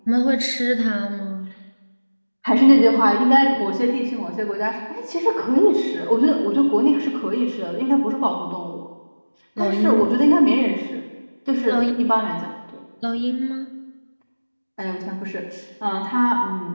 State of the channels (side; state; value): both; inverted; correlation -1.00